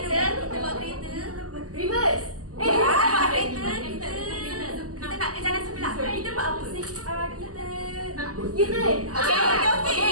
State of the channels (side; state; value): left; late; 0.67 ms